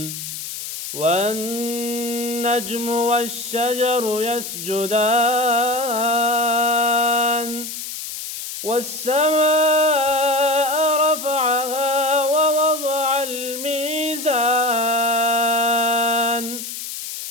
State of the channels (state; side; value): noise; left; hiss, 8 dB below the sound